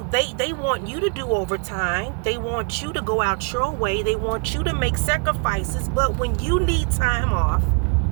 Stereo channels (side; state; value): left; quieter; 38.3 dB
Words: They want you to do overtime. They want you to go out your way. They want you to make sacrifices. But when you need time off,